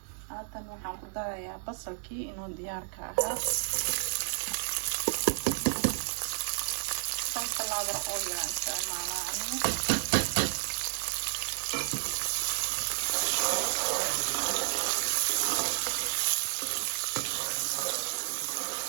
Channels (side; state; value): left; silent; digital silence